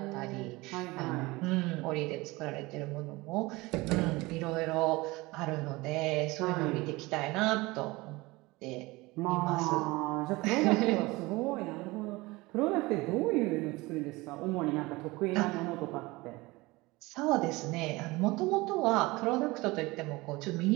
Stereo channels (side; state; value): left; quieter; 21.9 dB